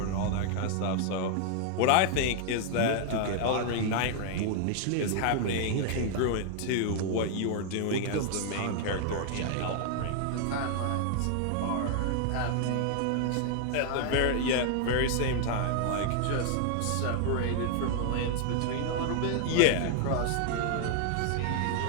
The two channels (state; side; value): different; both; correlation 0.00